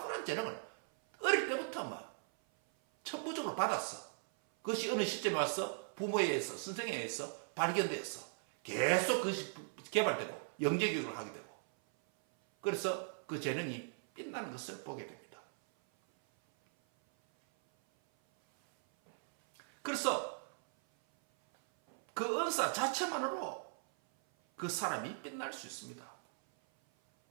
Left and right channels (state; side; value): silent; left; 52 dB below the other